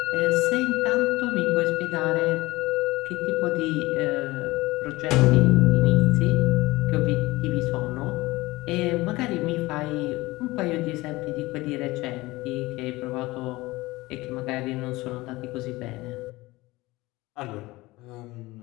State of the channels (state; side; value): quieter; right; 20.3 dB